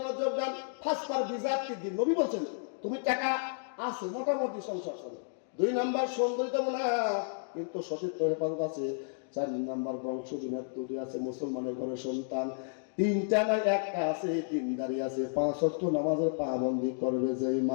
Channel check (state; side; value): silent; right; digital silence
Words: মনোযোগ দেন ফার্স্ট পার বিজাত কি দিন নবী বলছেন তুমি টাকা আছে মোটামুটি সংসার চলে 2 নাম্বার সৌন্দর্য না কিন্তু সতীর্থ হেফাজত আছে 4 নাম্বার বংশ বিনার তৈরি আছে মুসলমানের ঘরে সন্তান 3টা না একটা আছে দিনদারি আছে 5 ওয়াক্ত নামাজের পাবন্দি করবে যেই